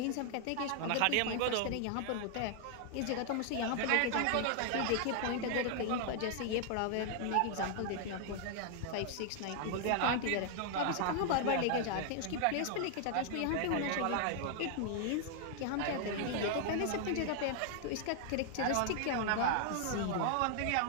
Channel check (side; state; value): both; different; correlation 0.00